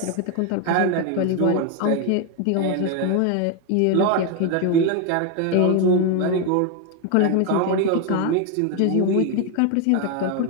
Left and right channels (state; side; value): different; both; correlation 0.01